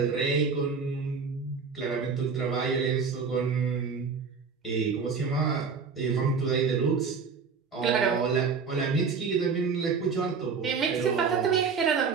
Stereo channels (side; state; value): left; quieter; 5.4 dB